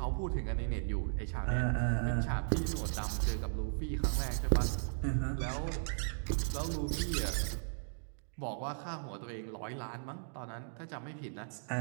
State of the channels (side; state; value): left; silent; digital silence